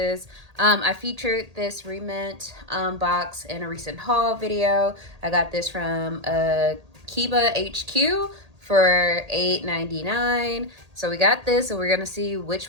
I featured this Rement box in a recent haul video. I got this from Kiba HQ for $8.99. So we got this, and we're going to see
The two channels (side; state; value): left; late; 1.8 ms